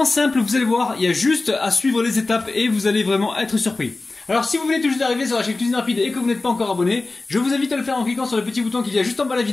simple, vous allez voir, il y a juste à suivre les étapes et vous allez vraiment être surpris. Alors si vous venez tout juste d'arriver sur la chaîne Cuisine Rapide et que vous n'êtes pas encore abonné, je vous invite à le faire en cliquant sur le petit bouton qu'il y a juste en bas de la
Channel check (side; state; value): right; quieter; 3.3 dB